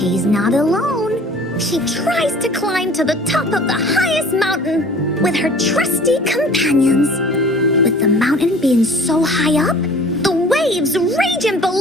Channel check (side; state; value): both; normal; correlation 0.47